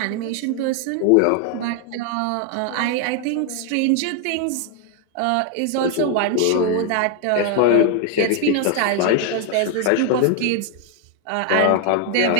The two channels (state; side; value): different; both; correlation 0.00